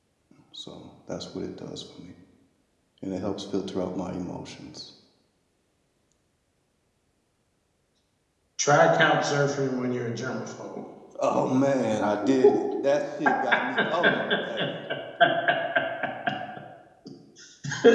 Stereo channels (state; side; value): identical; both; correlation 1.00